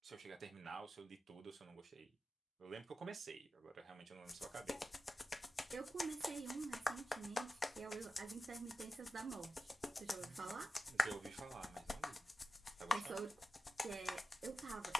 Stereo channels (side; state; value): both; normal; correlation 0.92